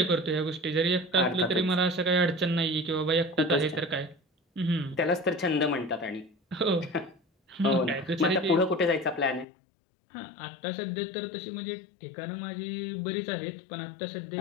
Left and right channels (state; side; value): drops out; right; at 9.5 s